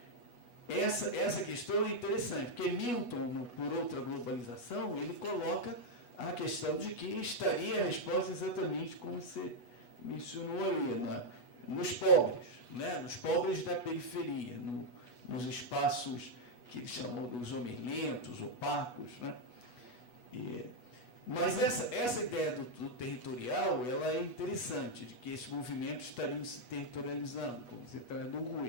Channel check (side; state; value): right; late; 8.2 ms